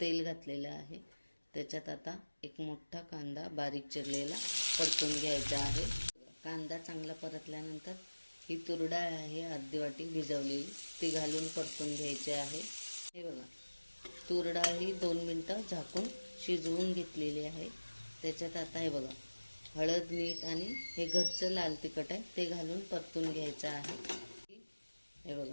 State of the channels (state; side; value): inverted; both; correlation -1.00